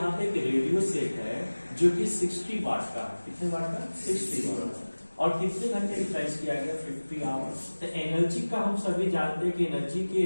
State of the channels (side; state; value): both; inverted; correlation -1.00